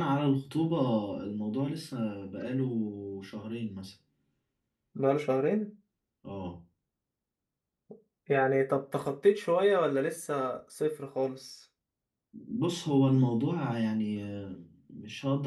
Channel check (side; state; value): both; identical; correlation 1.00